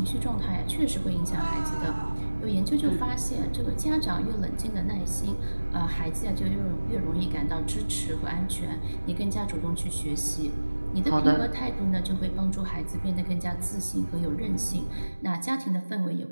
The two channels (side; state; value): both; inverted; correlation -1.00